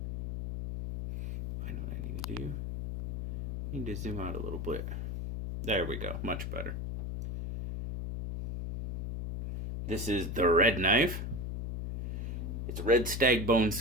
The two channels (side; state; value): left; noise; hum, 4 dB below the sound